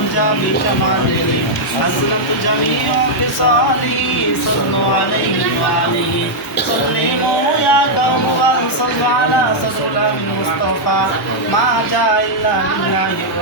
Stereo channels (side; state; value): both; normal; correlation -0.04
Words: بشماله حسنت جميع خصاله صلوا عليه وآله سلموا يا قوم وصلوا على صدر المصطفى ما جاء إلا لله